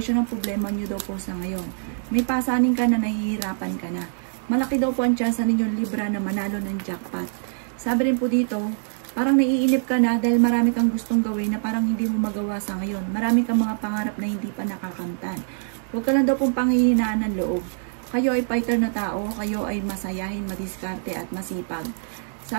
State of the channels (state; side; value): silent; left; digital silence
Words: ang problema nyo daw po sa ngayon. May pasanin ka na nahihirapan ka na. Malaki daw po ang tsansa ninyong Libra na manalo ng jackpot. Sabi rin po dito, parang naiinip ka na dahil marami kang gustong gawin na parang hindi mo magawa sa ngayon. Marami kang mga pangarap na hindi pa nakakamtan. Huwag ka lang daw pong panghihinaan ng loob. Kayo ay fighter na tao, kayo ay masayahin, madiskarte at masipag.